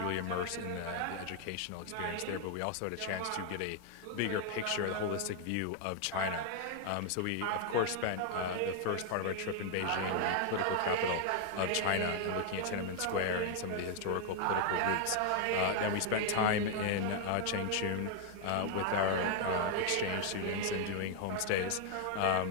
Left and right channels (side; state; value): both; different; correlation 0.00